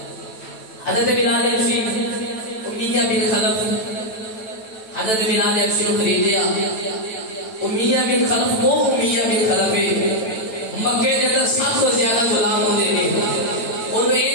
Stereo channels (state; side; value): late; right; 9.1 ms